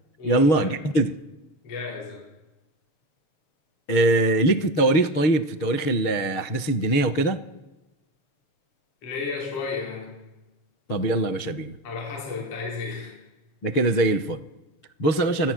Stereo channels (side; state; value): right; late; 6.5 ms